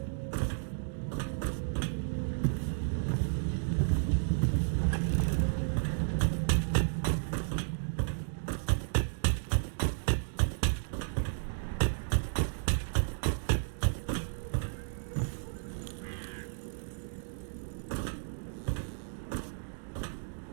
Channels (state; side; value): silent; left; digital silence